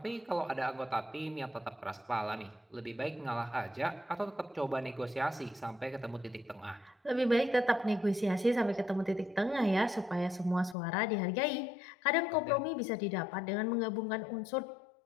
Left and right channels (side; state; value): right; drops out; at 10.8 s